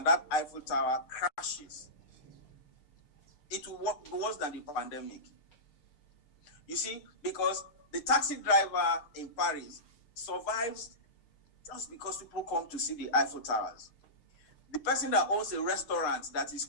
that Eiffel Tower crashes, it will work worse than the pandemic. You see, because the taxi driver in Paris survives just because people come to see the Eiffel Towers. The person that owns a restaurant that is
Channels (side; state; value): right; late; 6.6 ms